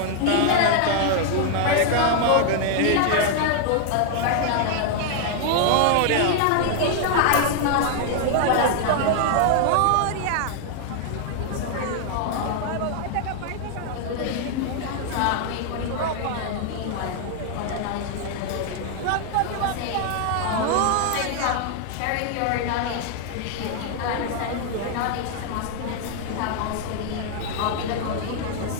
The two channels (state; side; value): different; both; correlation 0.00